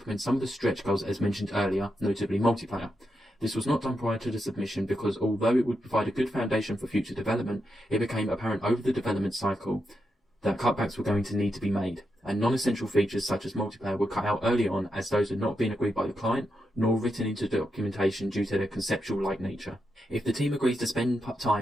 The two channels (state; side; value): normal; both; correlation 0.85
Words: some of the stretch goals as mentioned earlier, notably multiplayer. This was not done prior to the submission because although it would provide a good foundation for future development, it became apparent over the development cycle that cutbacks were going to need to be made, and non-essential features such as multiplayer were cut out early on as those had not been agreed by the client nor written into documentation due to their conceptual-like nature. If the team agrees to spend